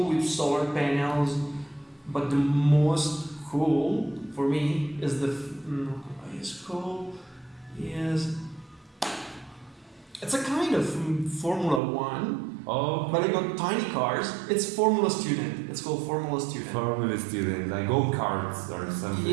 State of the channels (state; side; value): drops out; left; at 11.8 s